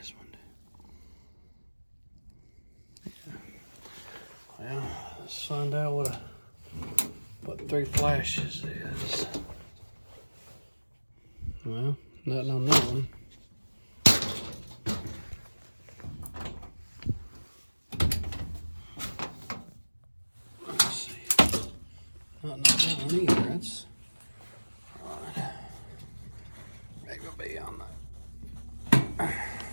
one. Yeah. Well, let's find out what 3 flashes is. Well, nothing on that one. Let's see. Nothing on that one either. That's right. Maybe it'll be on that.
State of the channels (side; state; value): both; inverted; correlation -1.00